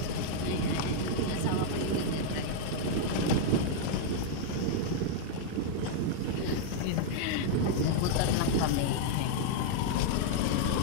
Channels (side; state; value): both; different; correlation -0.01